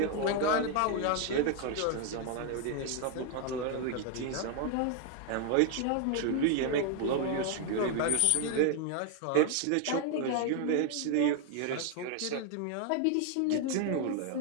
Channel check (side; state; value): both; different; correlation 0.01